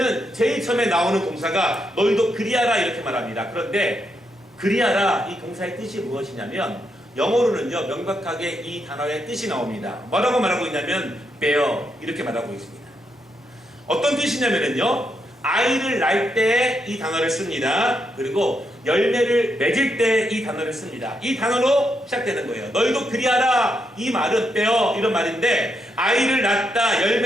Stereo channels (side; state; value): both; normal; correlation 0.80